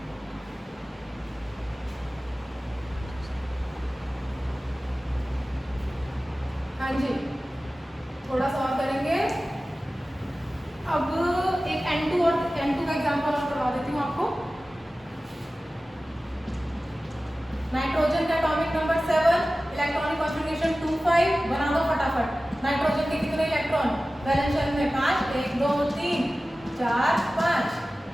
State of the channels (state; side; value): normal; both; correlation 0.96